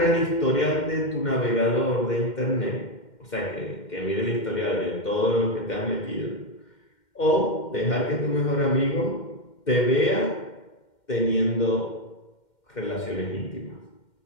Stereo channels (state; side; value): late; right; 2.1 ms